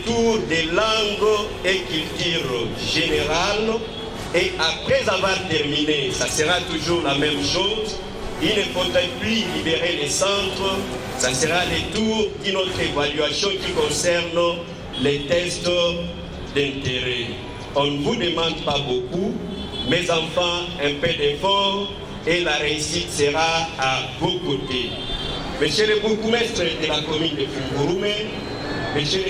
tour des langues et culture générale. Et après avoir terminé, ça sera toujours la même chose. Il ne faudrait plus libérer les centres. Ça sera le tour d'une autre évaluation qui concerne les tests d'intérêt. On ne vous demande pas beaucoup, Mes enfants, un peu d'effort et la réussite sera à vos côtés. Monsieur le bourgmestre de la commune de Fungurume, monsieur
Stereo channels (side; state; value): both; identical; correlation 1.00